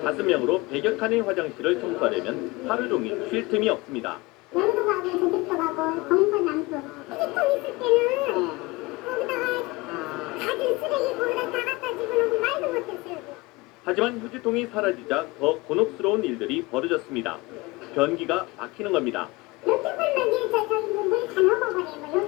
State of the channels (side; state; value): right; quieter; 23.0 dB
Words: 5명으로 100여 칸의 화장실을 청소하려면 하루 종일 쉴 틈이 없습니다. 여기도 가고 저기도 가고 정선 남수 휴지통 있을 때는 거기다가 가진 쓰레기 거기다 다 갖다 집어넣고 말도 못했어요. 하지만 휴지통이 사라지자 더 곤혹스러운 일들이 벌어졌습니다. 변기가 막히는 겁니다. 이렇게 풀면 이제 저기 물다 넘어버려요.